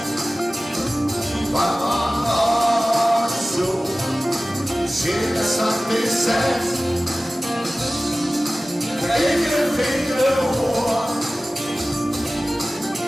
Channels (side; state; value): both; normal; correlation 0.97